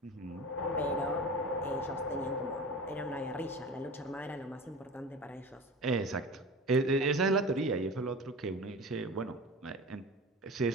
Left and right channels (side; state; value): both; normal; correlation 0.34